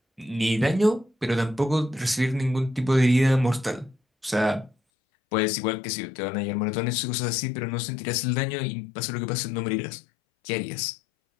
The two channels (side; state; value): right; drops out; at 4.8 s